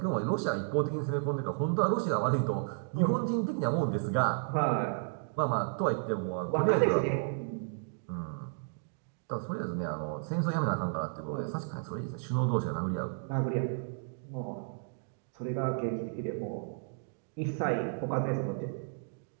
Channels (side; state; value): left; silent; digital silence